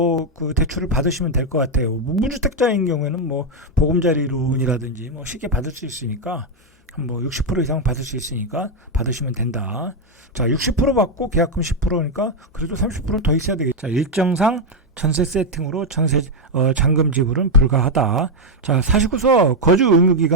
그 대출을 받으시면 될 것 같아요. 무주택자인 경우에는 뭐 보금자리 론이라든지 뭐 쉽게 받을 수 있으니까, 뭐 60% 이상 받을 수 있으니까 받으시면 된다. 자, 60% 받고 계약금 10%니까 그래도 30% 더 있어야 되겠죠. 자, 일정상 전세 세팅으로 잔금 지불은 불가하다. 자, 사시고서 거주 의무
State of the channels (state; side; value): normal; both; correlation 0.03